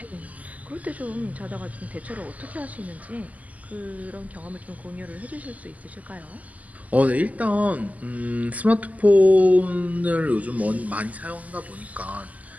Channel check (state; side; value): late; left; 0.076 ms